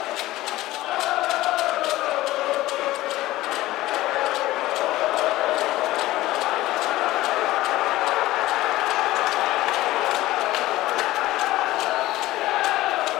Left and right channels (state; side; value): quieter; right; 16.8 dB